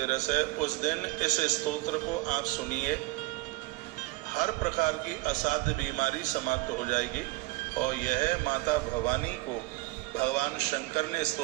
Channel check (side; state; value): left; quieter; 21.0 dB